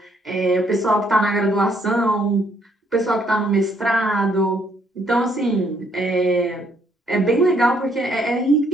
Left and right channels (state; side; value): normal; both; correlation 0.69